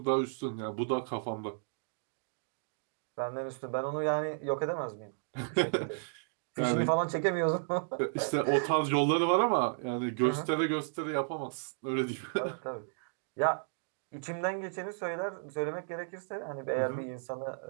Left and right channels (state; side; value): silent; left; digital silence